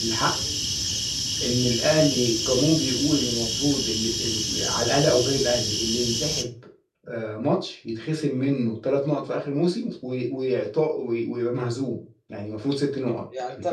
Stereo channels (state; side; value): identical; both; correlation 1.00